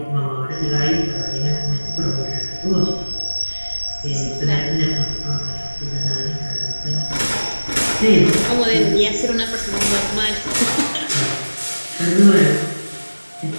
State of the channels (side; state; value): both; inverted; correlation -1.00